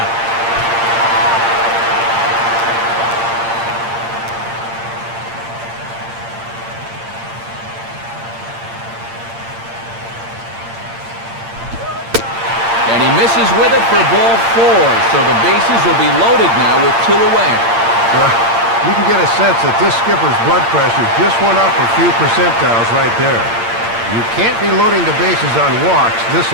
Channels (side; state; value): left; late; 8.7 ms